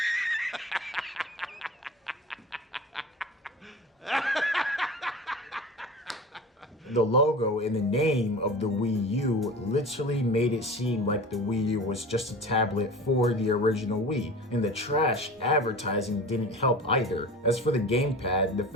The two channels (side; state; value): both; normal; correlation 0.35